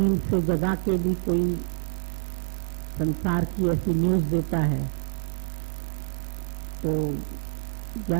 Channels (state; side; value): silent; left; 60 dB below the other